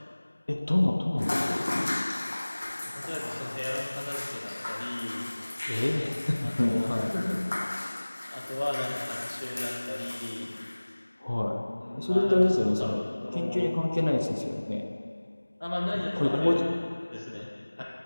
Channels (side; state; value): both; inverted; correlation -1.00